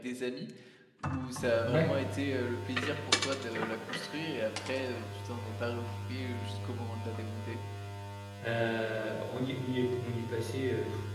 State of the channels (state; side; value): identical; both; correlation 1.00